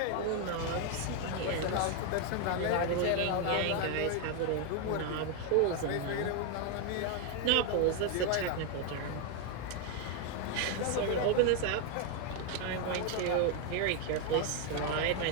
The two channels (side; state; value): both; different; correlation 0.01